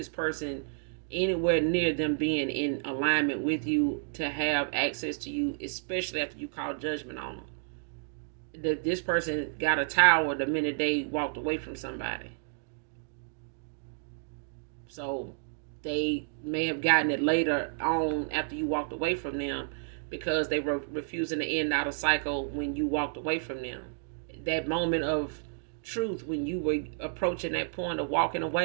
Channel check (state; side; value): silent; left; digital silence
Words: person anywhere near them being in alignment with you to have access to you, especially after you call judgment on them. This person got a tower the minute they walked away from somebody. So they may have gotten it later on after you walked away from them, because they were refusing to end out a cycle when you walked away from them. That moment of truth, when you were approaching that point of walking